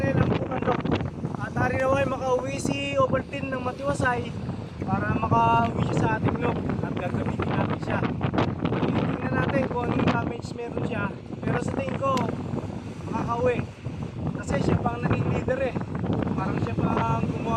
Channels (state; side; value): identical; both; correlation 1.00